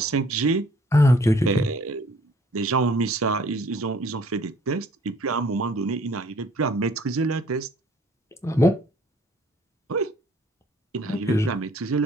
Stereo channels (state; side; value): normal; both; correlation 0.57